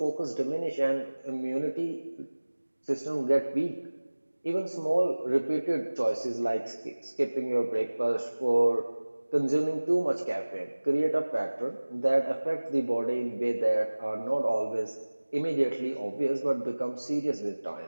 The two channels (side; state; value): both; inverted; correlation -1.00